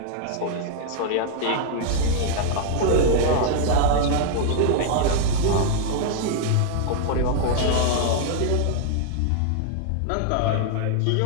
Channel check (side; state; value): both; different; correlation -0.01